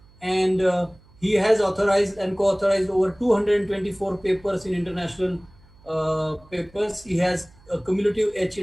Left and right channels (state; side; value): noise; right; hum, 27 dB below the sound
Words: and he has authorized and co-authorized over 224 papers in international papers. He has a cumulative H